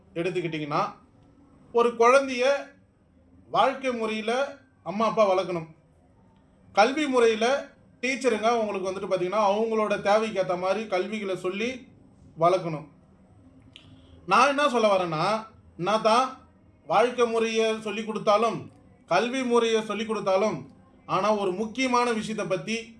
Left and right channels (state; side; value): identical; both; correlation 1.00